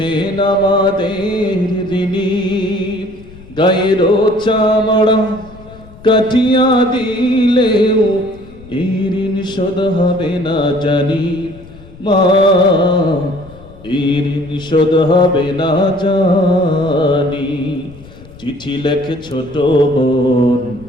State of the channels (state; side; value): noise; left; rumble, 21 dB below the sound